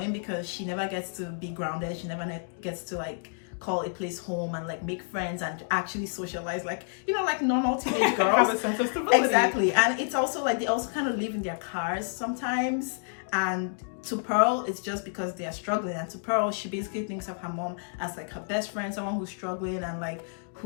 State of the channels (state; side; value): silent; right; digital silence